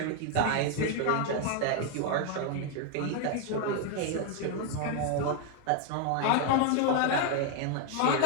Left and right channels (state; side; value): different; both; correlation 0.01